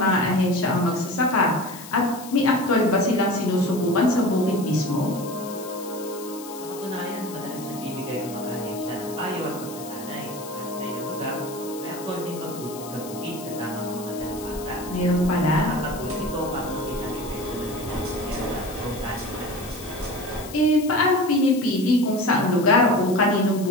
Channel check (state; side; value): noise; left; hiss, 15 dB below the sound